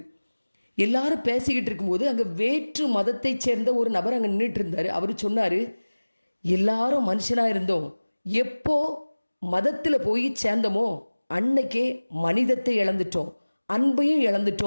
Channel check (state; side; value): inverted; both; correlation -1.00